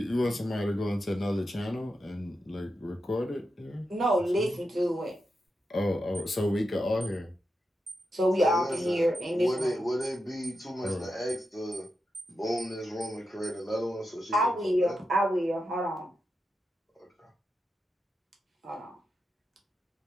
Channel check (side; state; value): both; normal; correlation 0.88